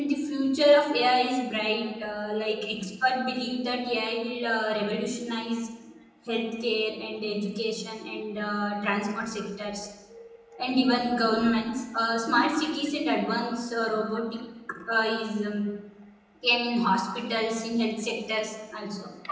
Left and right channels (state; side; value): identical; both; correlation 1.00